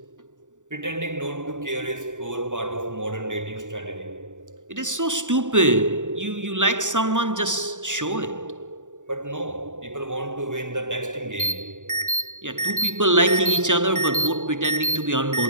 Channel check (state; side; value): late; left; 0.86 ms